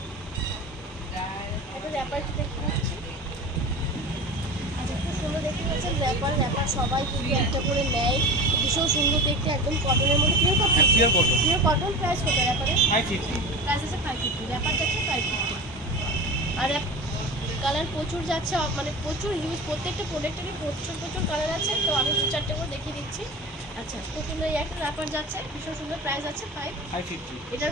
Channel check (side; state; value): both; normal; correlation 0.31